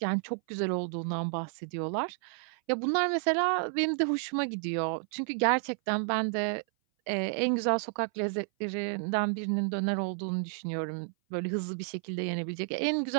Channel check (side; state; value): left; silent; 57 dB below the other